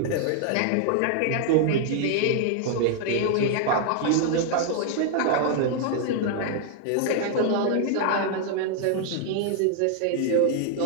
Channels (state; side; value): different; both; correlation 0.00